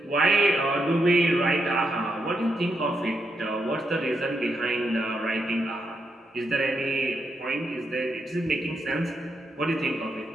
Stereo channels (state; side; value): normal; both; correlation 0.82